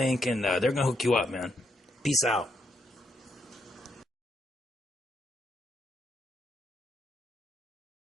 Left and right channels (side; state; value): both; normal; correlation 0.79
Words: and they're going to hook you up, man. Peace out.